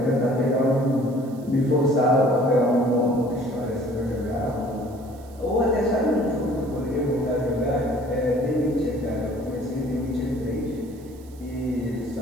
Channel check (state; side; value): noise; right; hiss, 27 dB below the sound